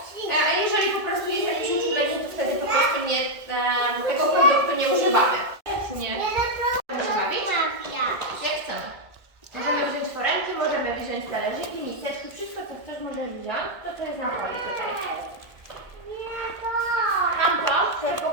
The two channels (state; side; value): late; left; 1.9 ms